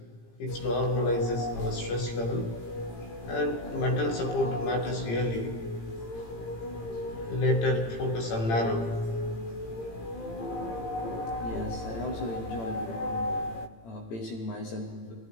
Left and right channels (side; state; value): right; late; 18 ms